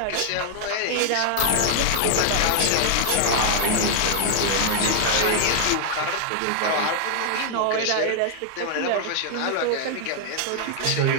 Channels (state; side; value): different; both; correlation 0.00